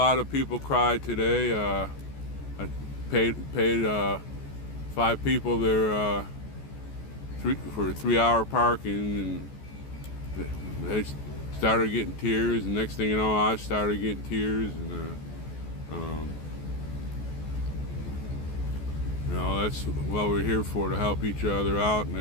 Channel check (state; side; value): late; right; 14 ms